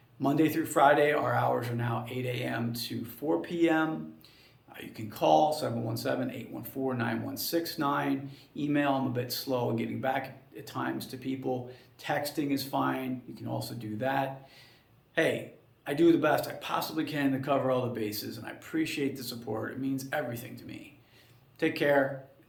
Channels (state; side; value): identical; both; correlation 1.00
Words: Monday through Friday, our hours are now 8 a.m. to 4 p.m. You can call 717-814-9169. Email, I'm a bit slow in getting back at times to people. Texting is fine. You can also do that. Hey, I do the best I possibly can to cover all the bases, and I appreciate the support. It means everything to me. Take care and